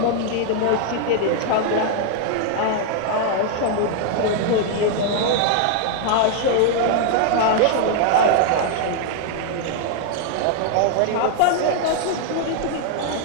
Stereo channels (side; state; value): both; different; correlation 0.00